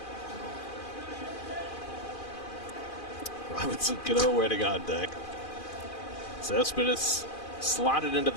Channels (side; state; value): right; late; 2.4 ms